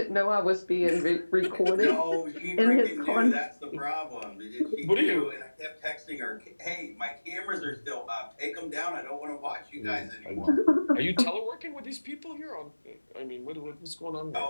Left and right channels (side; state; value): both; inverted; correlation -1.00